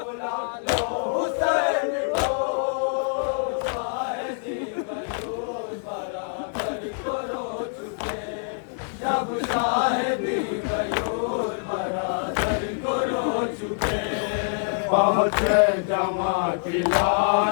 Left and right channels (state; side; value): silent; right; digital silence